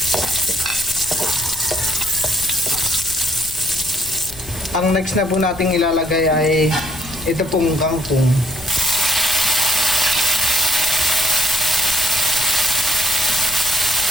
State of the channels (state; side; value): noise; left; rumble, 17 dB below the sound